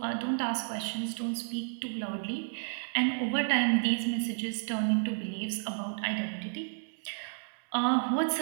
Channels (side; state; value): left; silent; digital silence